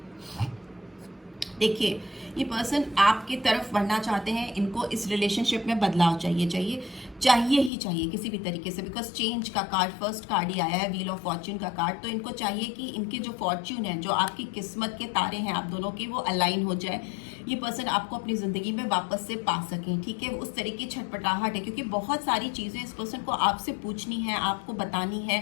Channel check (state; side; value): drops out; right; at 7.7 s